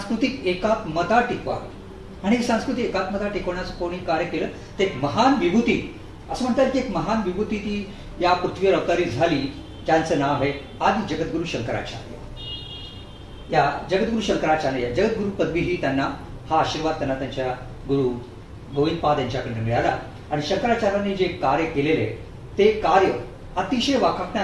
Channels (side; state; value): both; identical; correlation 1.00